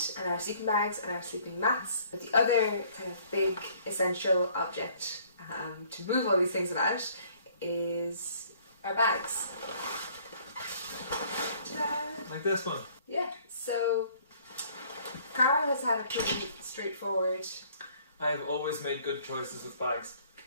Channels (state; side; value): inverted; both; correlation -0.58